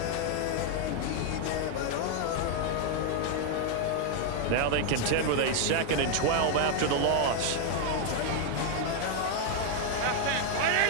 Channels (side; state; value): both; different; correlation 0.00